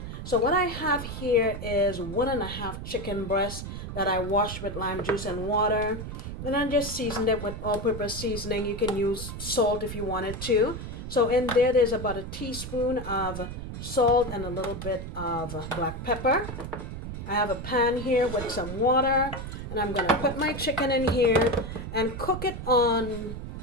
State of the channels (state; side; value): noise; right; rumble, 8 dB below the sound